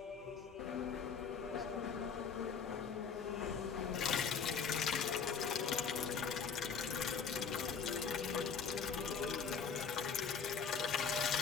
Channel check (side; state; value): right; quieter; 6.3 dB